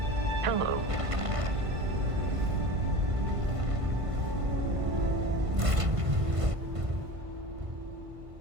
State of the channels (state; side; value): late; left; 1.5 ms